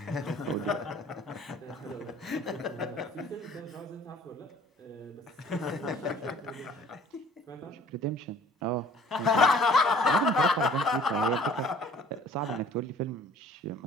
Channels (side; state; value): both; normal; correlation 0.51